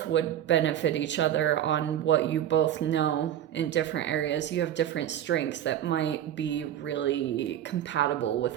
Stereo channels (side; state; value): left; quieter; 10.9 dB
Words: would benefit each other on what you both know in different areas. You have different strengths that might be really compatible